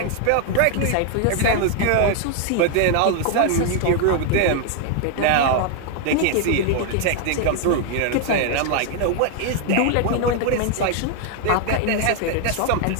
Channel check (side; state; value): both; different; correlation 0.00